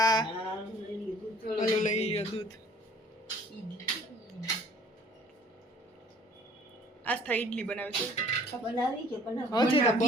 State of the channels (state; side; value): normal; both; correlation 0.54